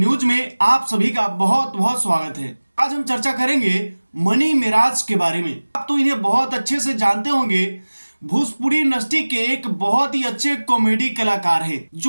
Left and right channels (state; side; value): inverted; both; correlation -1.00